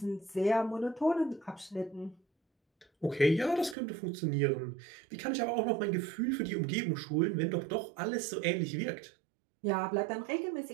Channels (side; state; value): left; drops out; at 3.8 s